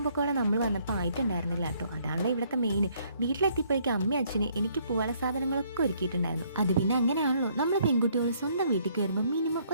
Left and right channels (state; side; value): inverted; both; correlation -0.66